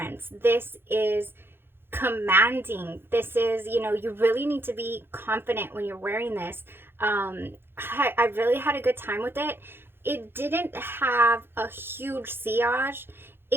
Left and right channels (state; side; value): late; left; 0.11 ms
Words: This is commanding. This is, you know, you really need to be confident when you're wearing this. I really had a good time with it. It didn't have a huge sillage.